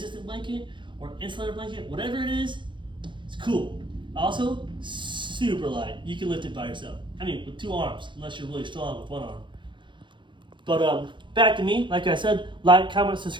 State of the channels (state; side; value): late; left; 0.23 ms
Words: blanket, or insulator blanket, whatever it is. It's cool. Also, super light. You can lift it by yourself. I mean, with 2 arms, unless you're really strong with 1 arm. But back to me. Like I said, like, comment,